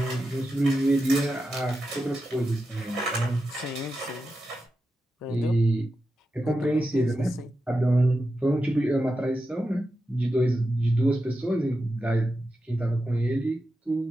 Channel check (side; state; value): both; normal; correlation 0.90